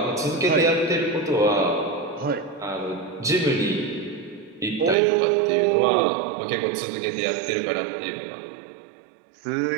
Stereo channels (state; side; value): drops out; left; at 5.0 s